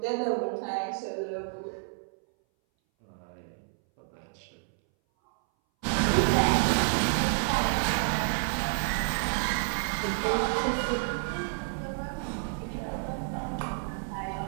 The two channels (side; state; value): left; silent; 58 dB below the other